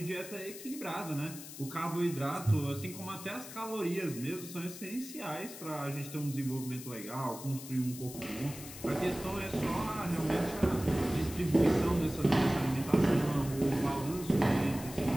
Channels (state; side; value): noise; left; hiss, 13 dB below the sound